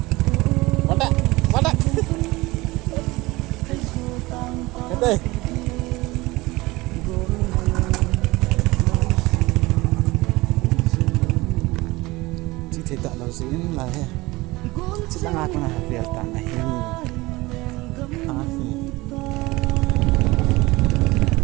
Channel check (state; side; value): quieter; left; 21.0 dB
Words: bắt đấy cái đây chỉ thấy tạo lâu dính là he chỉ đang ngạc mà việc cả này